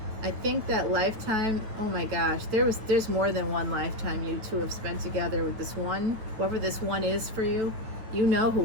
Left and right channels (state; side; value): late; left; 9.3 ms